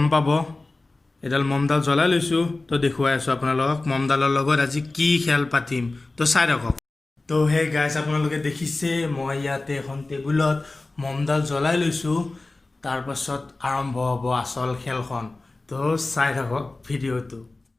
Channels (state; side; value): quieter; right; 3.2 dB